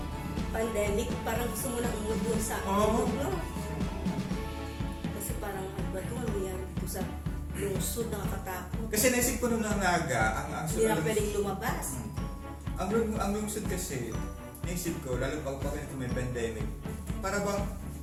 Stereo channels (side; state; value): both; identical; correlation 1.00